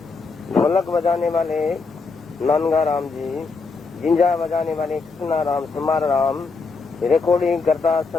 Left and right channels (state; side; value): quieter; right; 4.3 dB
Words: ढोलक बजाने वाले नानगा राम जी, जिंजा बजाने वाले कृष्णा राम समार राम, रिकॉर्डिंग करता